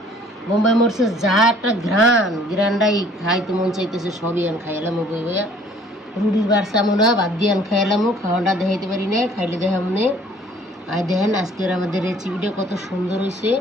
বোম্বাই মরিচের যা একটা গ্রানটাই খাইতে মন চাইতেছে, সবই আন খাইলাম বই বইয়া। রুটির বাড়ছে আমরা বাদ দিয়ে আন খাইলামও, খাওয়াটা দেখাইতে পারি না, খাইলে দেখা মনে। আর দেখেন আজকের আমাদের রেসিপিটা কত সুন্দর হয়েছে।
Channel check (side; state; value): both; normal; correlation 0.56